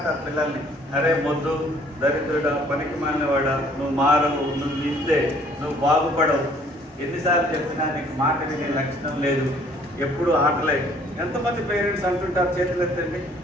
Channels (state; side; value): normal; both; correlation 0.59